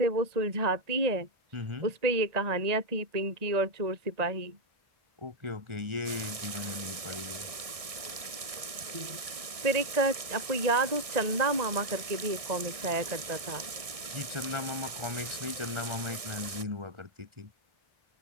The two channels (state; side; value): late; left; 1.6 ms